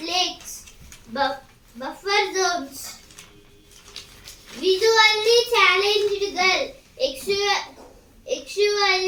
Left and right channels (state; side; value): identical; both; correlation 1.00